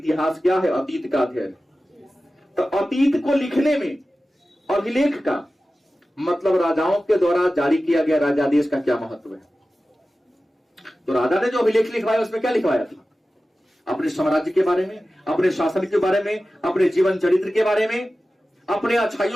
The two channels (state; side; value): normal; both; correlation 0.95